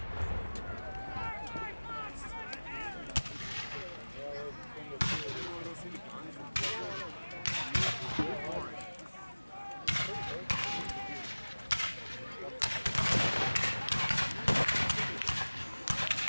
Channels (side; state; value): both; inverted; correlation -1.00